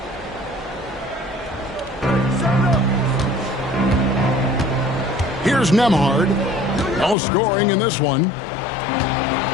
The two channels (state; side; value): drops out; right; at 7.2 s